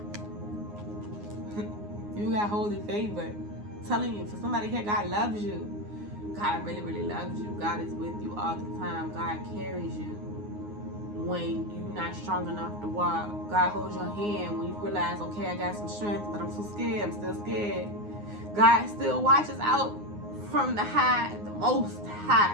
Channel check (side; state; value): left; late; 9.6 ms